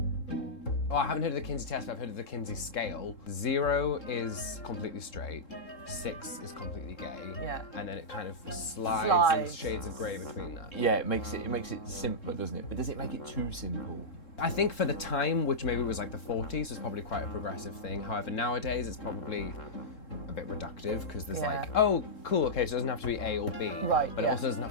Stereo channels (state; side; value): late; right; 3.7 ms